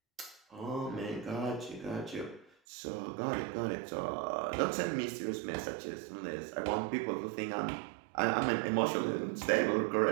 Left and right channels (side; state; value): left; drops out; at 2.5 s